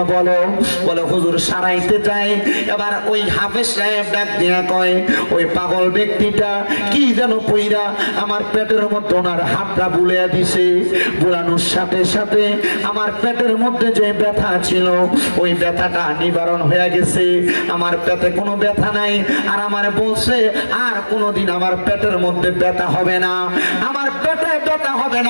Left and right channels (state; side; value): inverted; both; correlation -1.00